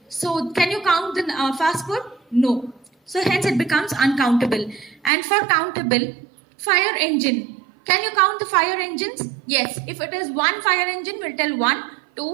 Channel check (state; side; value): drops out; left; at 5.1 s